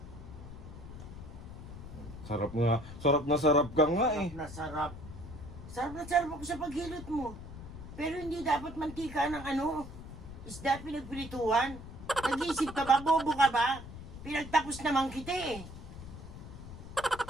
Sarap nga. Sarap na sarap ka nga eh. Sarap na sarap. Sarap na sarap ako sa paghilot mo. Pero hindi dapat mantika ng isda pinagpirituhan. Nag-iisip ka ba? Bobo ka ba? Pinagtapos naman kita eh.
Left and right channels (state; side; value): noise; left; rumble, 12 dB below the sound